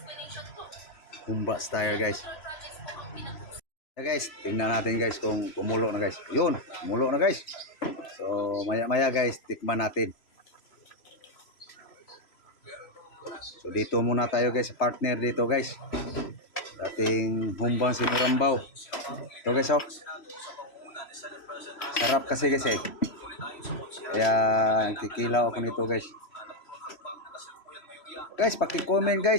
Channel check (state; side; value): late; right; 3.0 ms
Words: Humba style guys. Guys, tingnan natin guys kung kumulo na guys. Yun, kumulo na guys. So, maya-maya guys, tikman natin. So, dito muna tayo guys, partner dito guys. Ating humbang sinurambaw. Ito guys, oh. Sarap kasi guys eh. Kaya, kikilaw ako nito guys. Guys, paki-comment